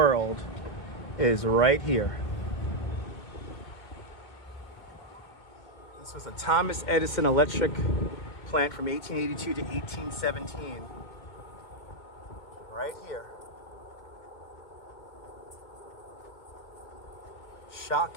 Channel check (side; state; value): right; late; 2.1 ms